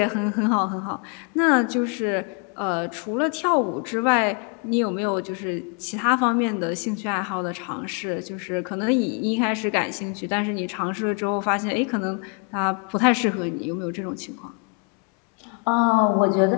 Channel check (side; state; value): right; quieter; 34.5 dB